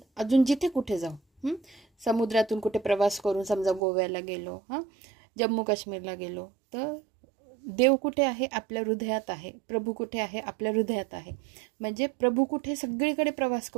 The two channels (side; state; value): left; drops out; at 3.8 s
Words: जिथे कुठे जाऊ, समुद्रातून कुठे प्रवास करून समजा गोव्याला गेलो, जम्मू काश्मीरला गेलो, तर देव कुठे आहे? आपल्या हृदयात आहे. प्रभू कुठे आहे? आपल्या हृदयात आहे. म्हणजे प्रभू कुठे? सगळीकडे प्रवास